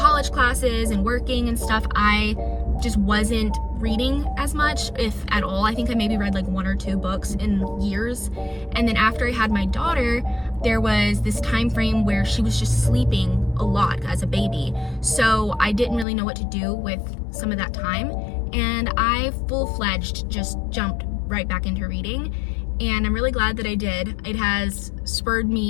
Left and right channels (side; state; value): right; drops out; at 16.1 s